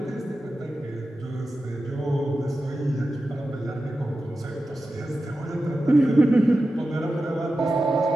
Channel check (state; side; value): normal; both; correlation 0.92